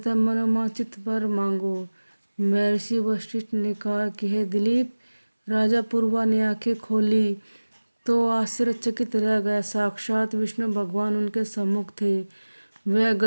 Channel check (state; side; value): inverted; both; correlation -1.00